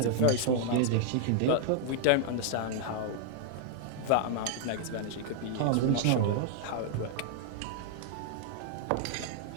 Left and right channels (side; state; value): both; different; correlation 0.00